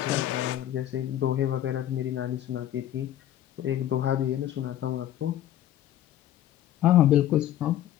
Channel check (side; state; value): right; quieter; 12.1 dB